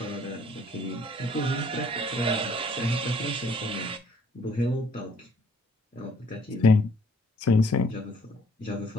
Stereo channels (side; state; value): both; normal; correlation 0.62